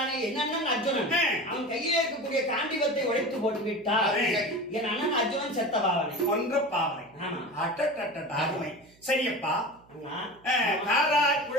என் அண்ணன் அர்ஜுனன், அவன் கையிலே இருக்கக்கூடிய காண்டிவத்தை உடைத்து போட்டு விட்டார். என் அண்ணன் அர்ஜுனன் செத்த பாவனை, ஒன்ற பாவனை. அருமை. சரியப்பா. காரா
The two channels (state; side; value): noise; right; hum, 29 dB below the sound